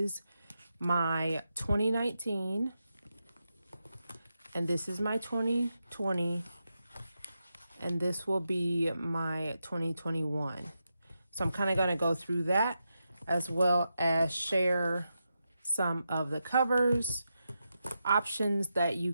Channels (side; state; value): both; inverted; correlation -0.87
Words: my 2019 and this is my 2020 and this will be my 2021. So I'm kind of going to go through that as well as share some of the covers, options that you